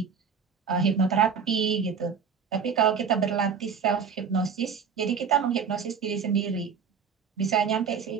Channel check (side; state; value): left; quieter; 6.4 dB